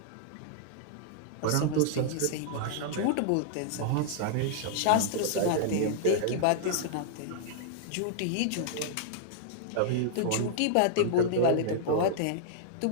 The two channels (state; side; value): different; both; correlation -0.02